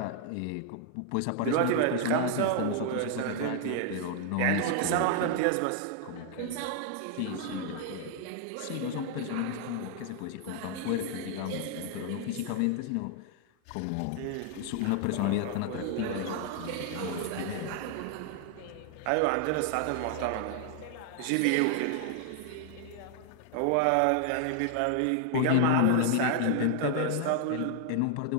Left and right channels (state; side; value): different; both; correlation 0.00